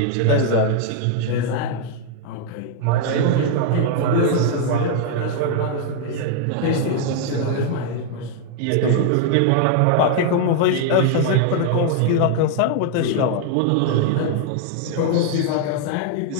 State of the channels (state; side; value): different; both; correlation 0.00